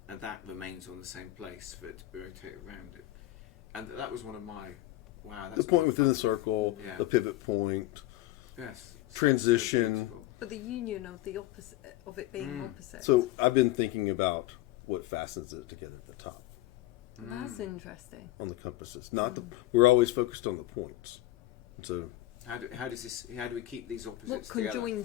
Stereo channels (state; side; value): quieter; right; 15.9 dB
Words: and that remains on the same place for it to rotate around it. And that was one of my that's the point within the circle, the pivot point, transition, so but the union of the opposite of it being opposite. So I've been thinking about what fastens it together at the top. That's interesting. On the compasses, not we're always focused on the points. So how do we keep these opposites together? What